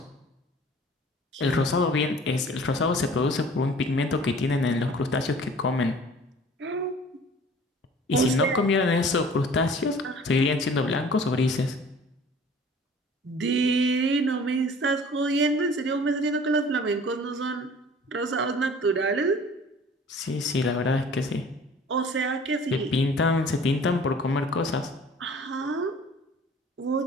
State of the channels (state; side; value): normal; both; correlation 0.48